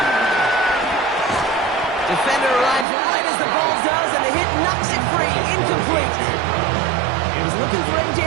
Defender arrives right as the ball does, and the hit knocks it free. Incomplete. He was looking for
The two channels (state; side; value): drops out; left; at 2.9 s